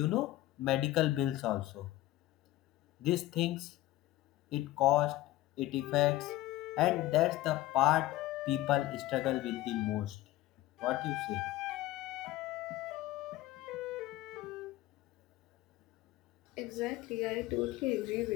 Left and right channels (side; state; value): right; quieter; 16.2 dB